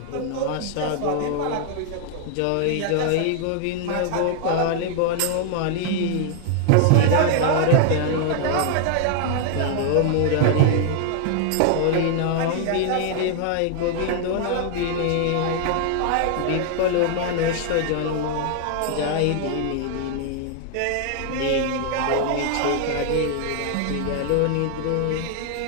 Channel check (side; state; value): both; different; correlation 0.00